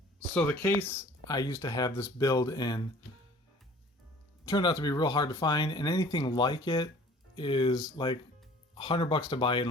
So the case I used to have this build in turned out to be real hard to find, and anything like it is like $100 to buy it and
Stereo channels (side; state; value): both; normal; correlation 0.50